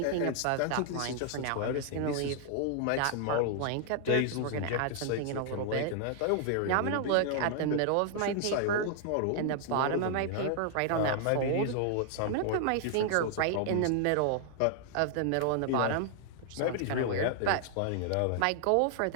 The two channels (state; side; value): different; both; correlation 0.00